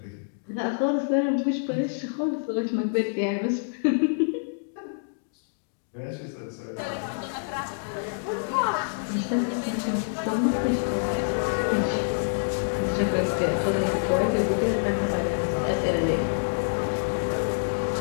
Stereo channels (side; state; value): right; silent; digital silence